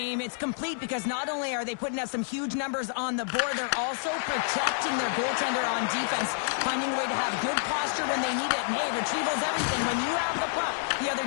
It's complete because not only are they putting up some huge numbers on the board, they're also protecting their goaltender on defense, finding a way to have good posture when they need it. And, hey, retrieval's everything. When you have the puck, the other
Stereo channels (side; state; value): right; silent; digital silence